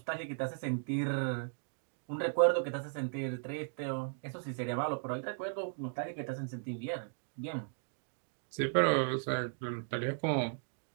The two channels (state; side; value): silent; left; digital silence